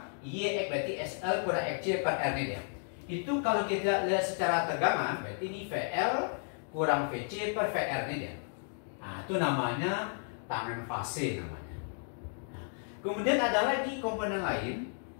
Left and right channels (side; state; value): right; silent; 56 dB below the other